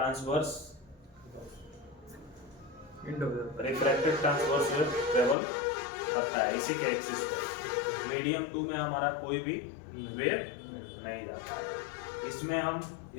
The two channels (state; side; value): drops out; right; at 5.4 s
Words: refracted transverse wave travel करता है इसी के एक्सिस पे। मीडियम 2 में हमारा कोई भी वेव नहीं जाता है। इसमें हम